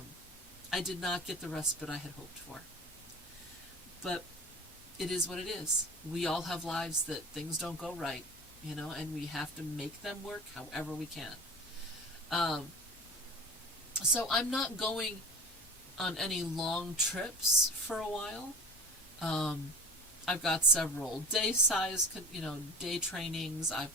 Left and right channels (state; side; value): normal; both; correlation 0.38